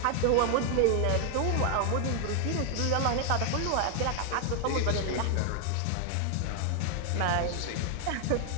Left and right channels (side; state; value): both; different; correlation 0.00